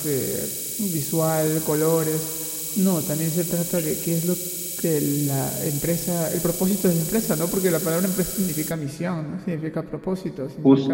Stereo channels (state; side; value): identical; both; correlation 1.00